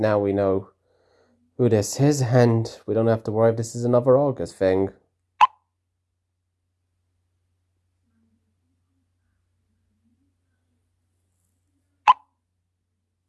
we know who this is, and we don't have to worry if this is another Argus thing.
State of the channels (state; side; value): identical; both; correlation 1.00